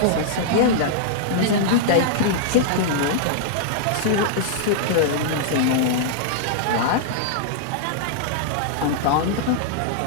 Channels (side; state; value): both; different; correlation -0.01